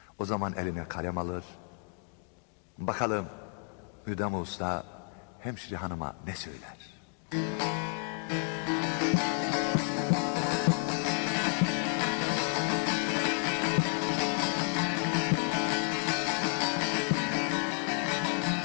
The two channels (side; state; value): right; quieter; 39.4 dB